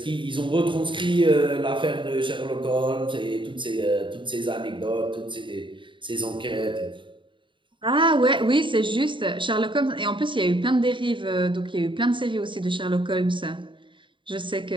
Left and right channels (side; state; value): left; late; 0.24 ms